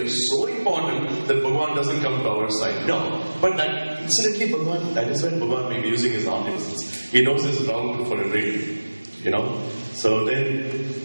so important that Bhagavan doesn't come to our side. No. But that, incidentally, Bhagavan, that is when Bhagavan may be using his omniscience. He knows his route for everything. So then,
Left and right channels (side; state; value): both; inverted; correlation -1.00